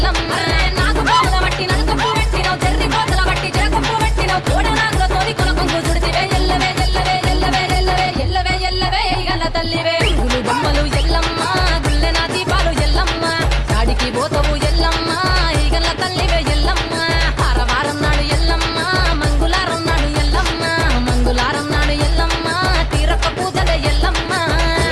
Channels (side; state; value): both; identical; correlation 1.00